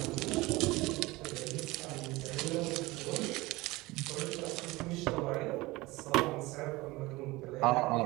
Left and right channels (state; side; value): quieter; left; 21.0 dB